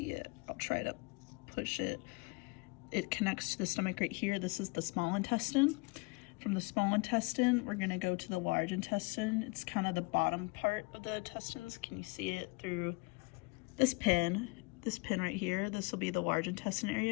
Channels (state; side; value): quieter; right; 28.1 dB